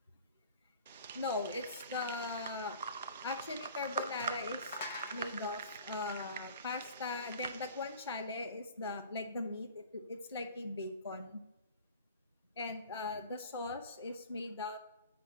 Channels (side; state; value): both; inverted; correlation -0.45